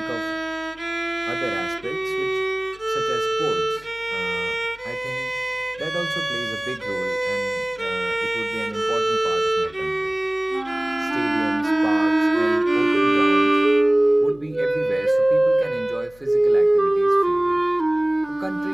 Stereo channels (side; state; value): left; noise; hum, 27 dB below the sound